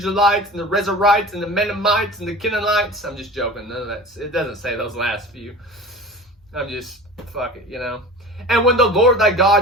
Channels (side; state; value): both; normal; correlation 0.37